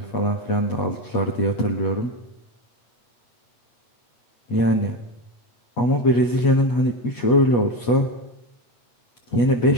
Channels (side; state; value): right; late; 8.3 ms